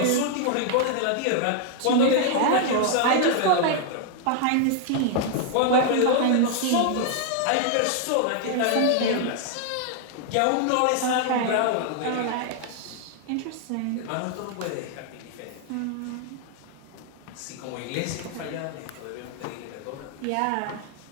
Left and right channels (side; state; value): both; different; correlation 0.00